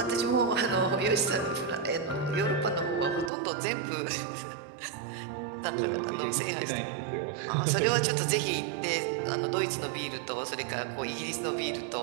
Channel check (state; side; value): drops out; left; at 3.3 s